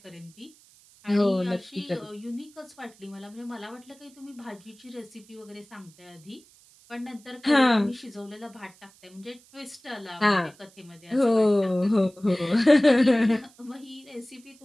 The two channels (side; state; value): right; noise; hiss, 27 dB below the sound